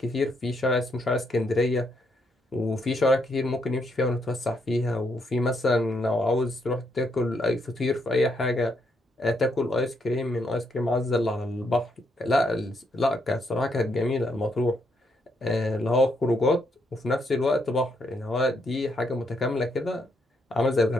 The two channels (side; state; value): both; normal; correlation 0.76